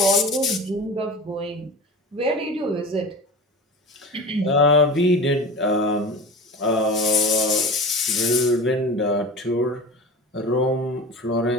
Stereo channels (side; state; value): both; normal; correlation 0.33